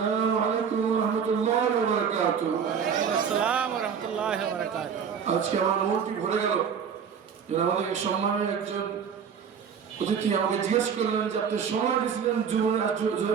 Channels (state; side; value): quieter; left; 7.1 dB